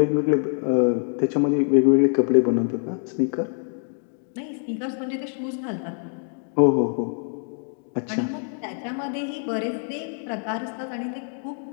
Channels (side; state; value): right; silent; 57 dB below the other